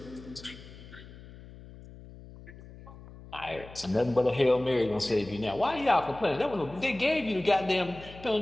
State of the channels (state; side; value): noise; left; hum, 17 dB below the sound